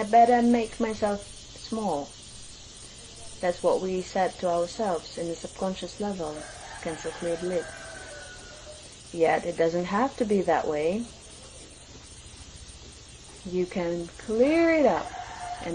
better make myself small. That's what we said to ourselves in the subconscious level, Cancer Cleared Lid. Yet it doesn't have to be that way. You can clear it up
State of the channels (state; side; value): identical; both; correlation 1.00